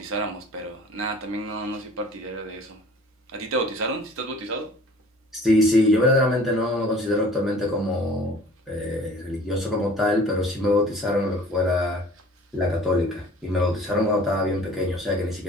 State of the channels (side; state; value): both; normal; correlation 0.48